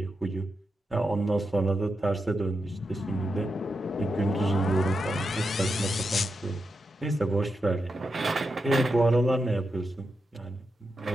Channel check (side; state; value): both; normal; correlation 0.87